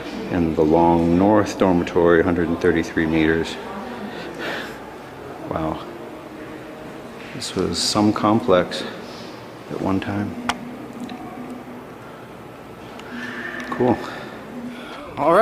and the long North Dormitory, 133 meters. Wow. This was some complex at one time. Cool. All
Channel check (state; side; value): identical; both; correlation 1.00